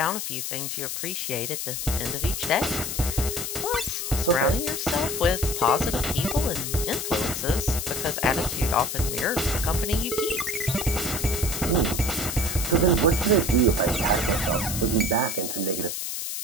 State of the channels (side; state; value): left; noise; hiss, 4 dB below the sound